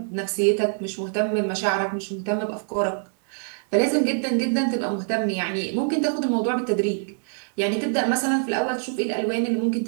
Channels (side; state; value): left; silent; digital silence